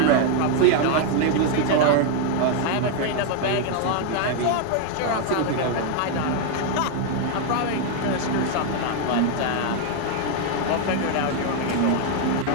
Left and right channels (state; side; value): different; both; correlation 0.00